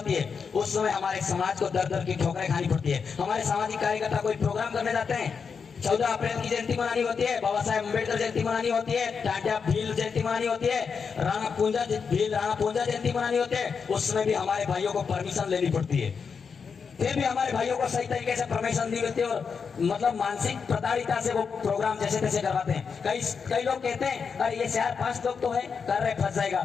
है, उस समय हमारे समाज को दर दर की ठोकरें खानी पड़ती है। हमारे सामाजिक कार्यकर्ता कोई प्रोग्राम करने जाते हैं, 14 अप्रैल की जयंती मनानी होती है, बाबा साहेब अम्बेडकर जयंती मनानी होती है, टाटा भील जयंती मनानी होती है, राणा पूंजा जयंती मनानी होती है, उस समय भी हमारे भाइयों को परमिशन लेनी पड़ती है। फिर भी हमारे भाइयों को सही तरीके से परमिशन दी होती है, और मतलब मानसिक प्रताड़िता से वो प्रोग्राम जैसे तैसे करवाते हैं। कई लोग कहते हैं अरे ये 4-5 लोग तो है कर रहे, फंस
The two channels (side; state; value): right; quieter; 5.9 dB